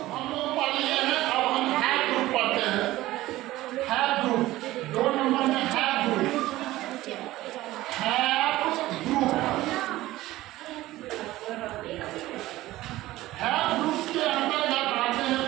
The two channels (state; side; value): quieter; left; 16.6 dB